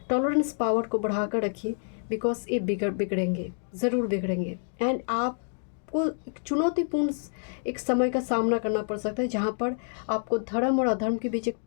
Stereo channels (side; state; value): right; silent; digital silence